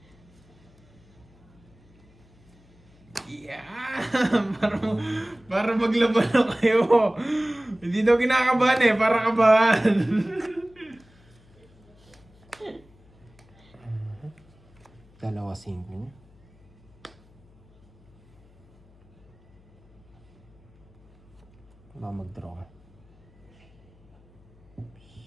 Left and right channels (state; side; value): noise; left; hum, 28 dB below the sound